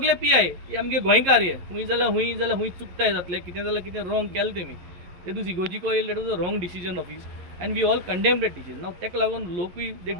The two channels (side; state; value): left; late; 11 ms